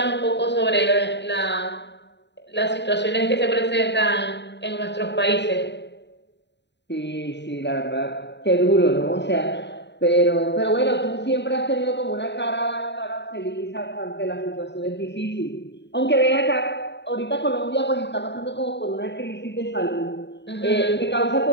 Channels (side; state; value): right; late; 0.51 ms